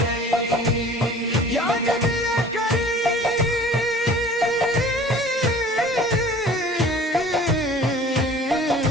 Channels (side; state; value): both; normal; correlation 0.46